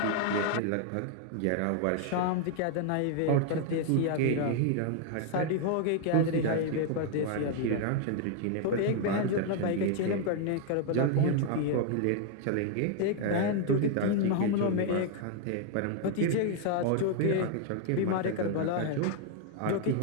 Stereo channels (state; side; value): different; both; correlation 0.00